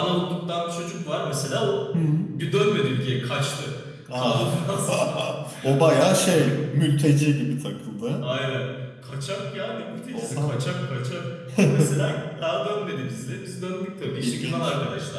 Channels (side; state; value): both; identical; correlation 1.00